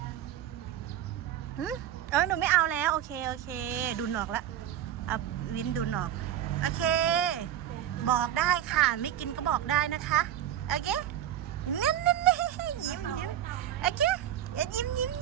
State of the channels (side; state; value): left; quieter; 11.1 dB